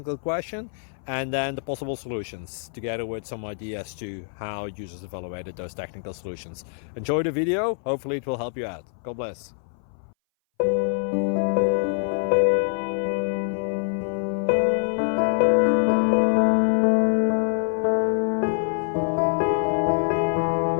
question and then the possible solutions, together with some ideas to how users evaluated those technical solutions. Enjoy the video, hopefully it will help you out. God bless.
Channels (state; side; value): silent; right; 60 dB below the other